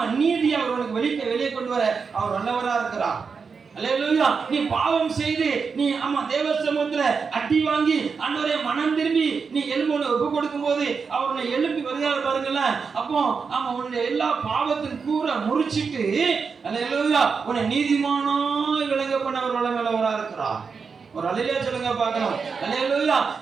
நீதி அவர் உனக்கு வெளியே கொண்டு வர அவர் நல்லவரா இருக்கிறார். அல்லேலூயா. நீ பாவம் செய்து நீ, ஆமா, தேவ சமூகத்துல அடி வாங்கி ஆண்டவரே மனம் திரும்பி நீ எலும்பு ஒப்பு கொடுக்கும் போது அவர் உன்னை எழுப்பி வருகிறார் பாருங்கல்ல. அப்போ ஆமா, உன்னுடைய எல்லா பாவத்தின் கூற முறிச்சிட்டு, அல்லேலூயா, உன்னை நீதிமானாய் விளங்க பண்ண அவர் வல்லவரா இருக்கிறார். ஒரு அல்லேலூயா சொல்லுங்க பார்க்கலாம். அல்லேலூயா.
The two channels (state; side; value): quieter; left; 5.4 dB